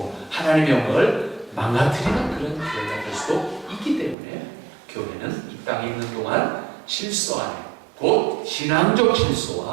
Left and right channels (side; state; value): left; drops out; at 4.2 s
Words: 하나님의 영광을 망가뜨리는 그런 교회가 될 수도 있기 때문에 교회는 이 땅에 있는 동안 질서 안에, 곧 신앙적